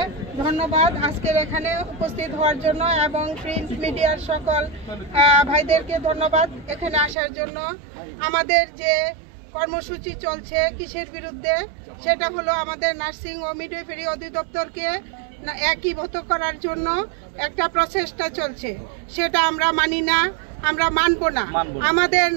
ধন্যবাদ আজকের এখানে উপস্থিত হওয়ার জন্য এবং প্রিন্ট মিডিয়ার সকল ভাইদেরকে ধন্যবাদ এখানে আসার জন্য। আমাদের যে কর্মসূচি চলছে কিসের বিরুদ্ধে, সেটা হলো আমাদের নার্সিং ও মিডওয়াইফারি অধিদপ্তরকে একীভূত করার জন্য একটা প্রচেষ্টা চলছে, সেটা আমরা মানি না, আমরা মানব না। আমাদের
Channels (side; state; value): left; drops out; at 7.2 s